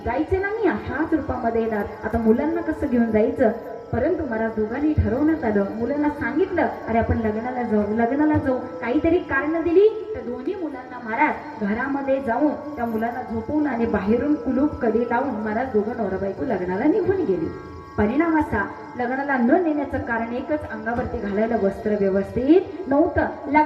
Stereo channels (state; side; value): identical; both; correlation 1.00